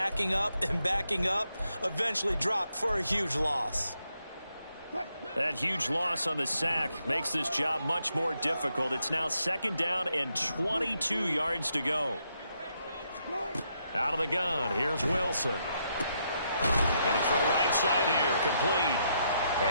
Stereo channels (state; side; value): inverted; both; correlation -0.78